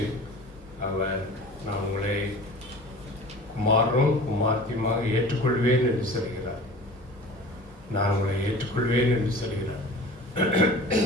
அவர் நான் உங்களை குமாரனும் குமார்த்தியுமாக ஏற்றுக்கொள்வேன் என்று சொல்கிறார். நான் உங்களை ஏற்றுக்கொள்வேன் என்று சொல்கிறார்.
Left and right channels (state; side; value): normal; both; correlation 0.41